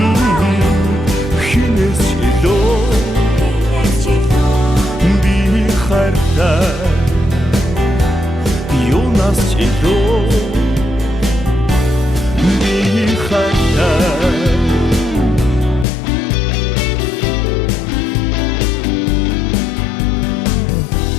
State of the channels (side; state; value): right; drops out; at 15.9 s